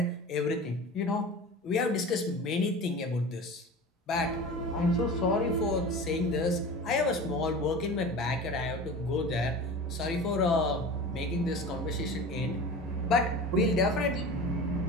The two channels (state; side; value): normal; both; correlation 0.34